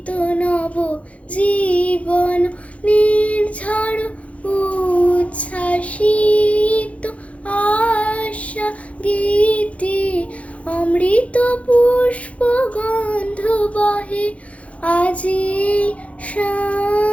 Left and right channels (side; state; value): right; late; 0.065 ms